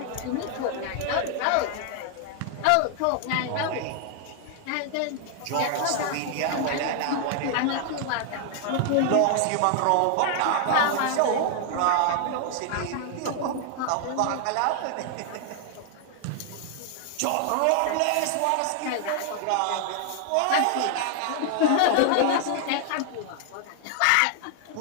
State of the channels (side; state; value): both; different; correlation 0.00